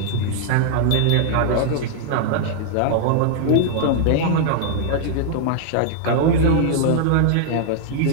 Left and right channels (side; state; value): both; different; correlation -0.01